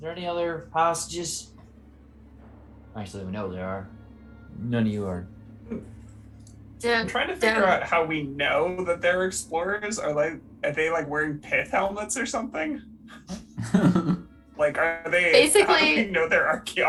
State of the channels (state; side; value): identical; both; correlation 1.00